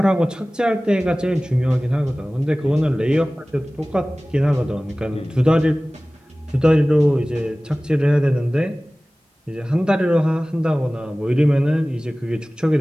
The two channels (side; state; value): both; normal; correlation 0.98